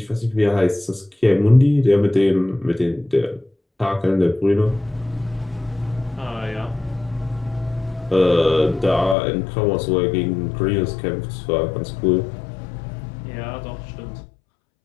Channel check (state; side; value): drops out; right; at 9.2 s